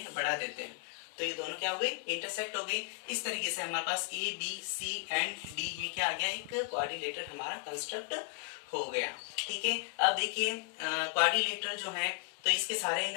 बढ़ा देते हैं। तो ये दोनों क्या हो गए, इंटरसेक्ट हो गए। इस तरीके से हमारे पास A B C and D ये क्या आ गया, एक क्वाड्रिलेटर हमारा कंस्ट्रक्ट हो गया, ठीक है। अब देखिए क्वाड्रिलेटर जो है, तो इसके सारे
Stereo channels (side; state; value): right; quieter; 29.1 dB